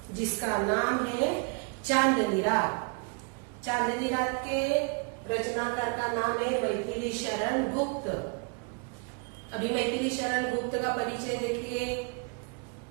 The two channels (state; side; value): quieter; left; 35.6 dB